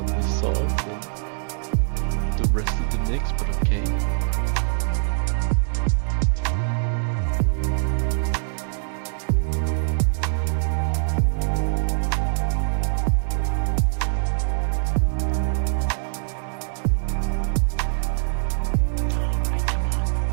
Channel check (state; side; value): silent; left; digital silence